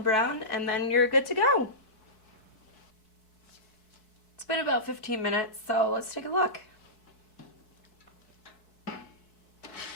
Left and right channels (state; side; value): late; right; 4.6 ms